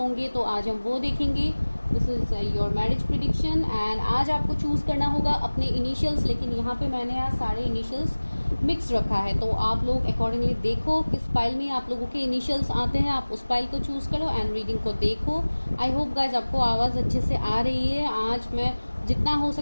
तो आज हम वो देखेंगे। This is your marriage prediction and आज आपको चूज करना होगा अपने इनिशियल्स, लेकिन यहाँ पे मैंने आज सारे इनिशियल्स मिक्स रखा है, तो आप लोग अकॉर्डिंगली देखो किस फाइल में आप लोगों के इनिशियल्स आते हैं, आप उस फाइल को चूज करो एंड रीडिंग को देखो। आई होप गाइज आपको आवाज़ अच्छे से आ रही है। आज मैं जितना हो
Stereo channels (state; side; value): inverted; both; correlation -1.00